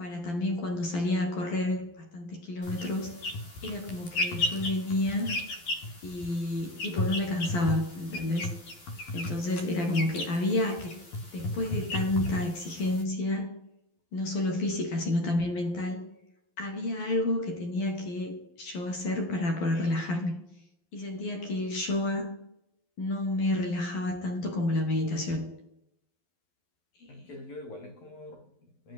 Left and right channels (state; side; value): late; right; 12 ms